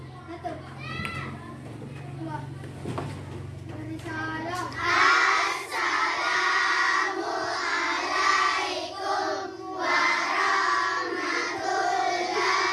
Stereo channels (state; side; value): identical; both; correlation 1.00